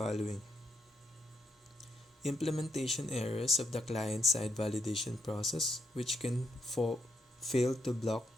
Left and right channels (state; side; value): normal; both; correlation 0.78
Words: implementation errors of the client-side validation process, which can fail to block